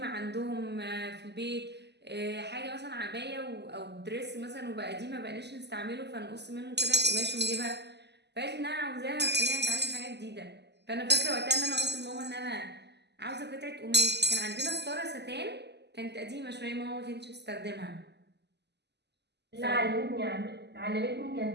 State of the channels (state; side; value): late; left; 0.50 ms